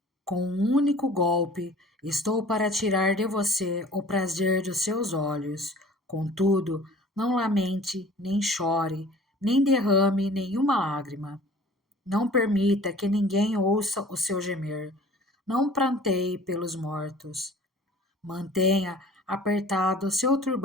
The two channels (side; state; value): both; normal; correlation 0.47